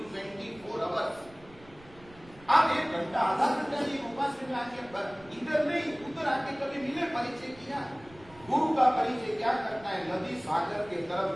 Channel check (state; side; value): noise; right; rumble, 23 dB below the sound